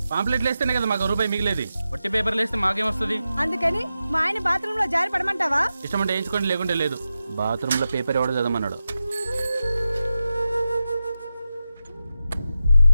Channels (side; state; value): both; inverted; correlation -0.91